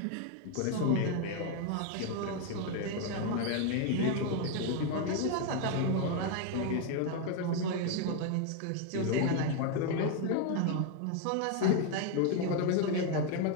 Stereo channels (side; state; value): both; different; correlation 0.01